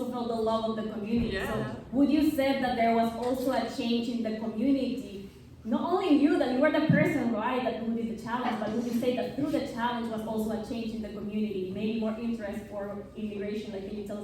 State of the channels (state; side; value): identical; both; correlation 1.00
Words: felt the love of the community. Yeah. So would you say that there was also a change in the community? Not only you, that you were the person, right, that who did the challenge, but would you say that through the challenge was also a change in the community, maybe more interest for immigration? Like, can you tell